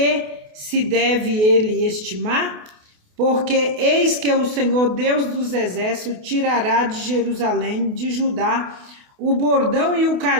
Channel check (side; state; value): left; late; 28 ms